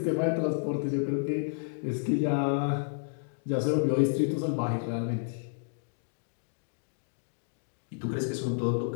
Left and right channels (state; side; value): silent; right; digital silence